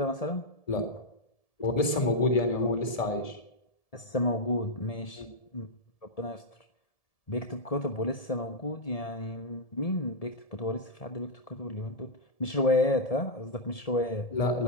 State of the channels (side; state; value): right; late; 1.7 ms